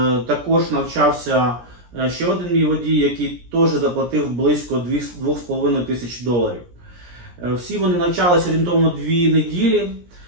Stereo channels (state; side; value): late; left; 17 ms